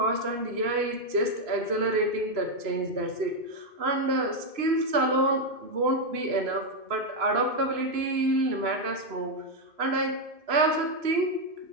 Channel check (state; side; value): late; left; 2.9 ms